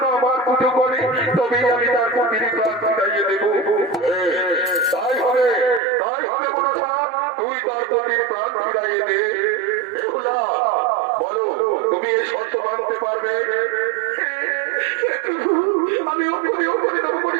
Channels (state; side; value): drops out; left; at 5.8 s